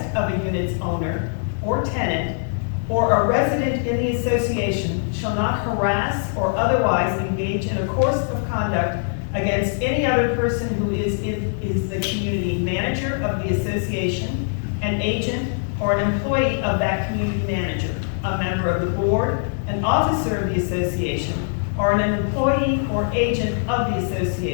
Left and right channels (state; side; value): silent; right; digital silence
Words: of a unit's owner or tenant, or a resident in the association shall not harass or otherwise engage in a course of conduct against any other person who is the community manager of the association, an agent, or an employee of that community manager, a member of the board, an officer of the association, or an employee or agent of the